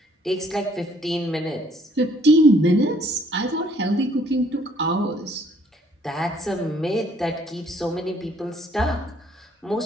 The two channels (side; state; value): both; normal; correlation 0.63